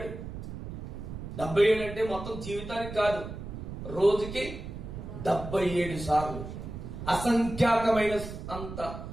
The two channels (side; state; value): right; noise; rumble, 9 dB below the sound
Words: 77 అంటే మొత్తం జీవితానికి కాదు, రోజుకి 77 సార్లు. అసంఖ్యాకమైన అంత